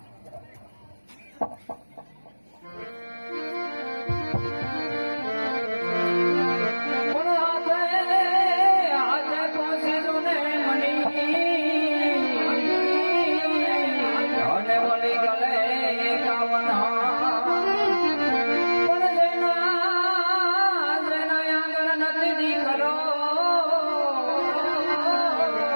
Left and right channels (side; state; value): both; inverted; correlation -1.00